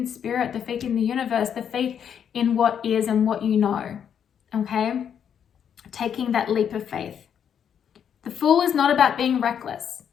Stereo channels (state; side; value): quieter; right; 8.3 dB